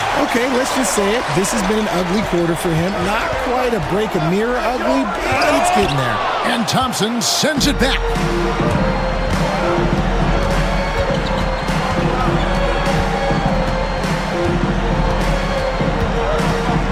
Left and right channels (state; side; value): identical; both; correlation 1.00